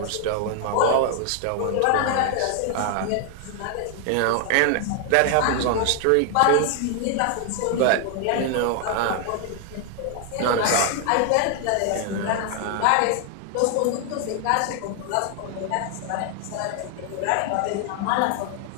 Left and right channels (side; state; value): both; different; correlation 0.00